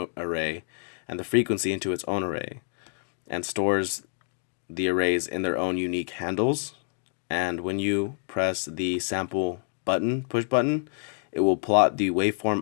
array and the frequency into its own array, and stores the arrays in their own unique handles. And when you press the sample button, push button, it will plot the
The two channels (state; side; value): silent; right; digital silence